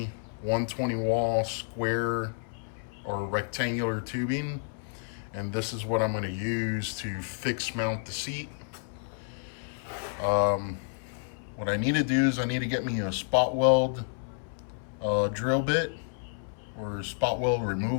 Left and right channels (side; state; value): right; silent; 58 dB below the other